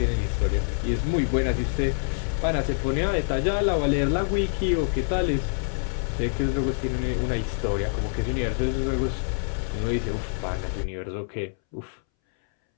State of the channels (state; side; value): silent; right; 61 dB below the other